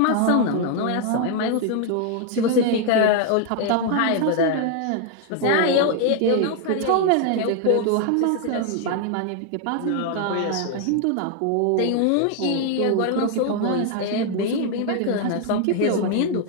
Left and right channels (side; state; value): both; different; correlation 0.00